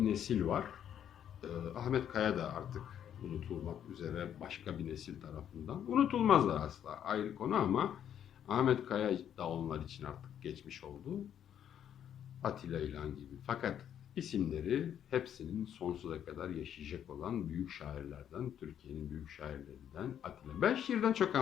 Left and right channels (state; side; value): quieter; right; 9.6 dB